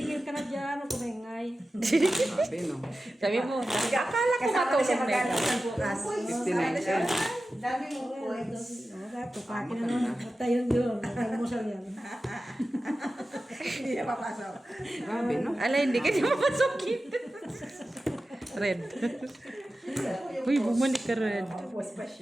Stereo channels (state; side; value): normal; both; correlation 0.94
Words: ka na dyan. Huwag kumingay. Sabi, no? Sabi mo, akala ko Kasama na siya matulog na magkano ito. ng bukas. 59 cents. Dami mong points. Tupakin na naman. Tayo yun. Nagmusal yan. Hindi niya papasok. Grabe, no? Ala, hindi ka niya mapasukin. Red. Uy, bumalik ka red. Tapos pa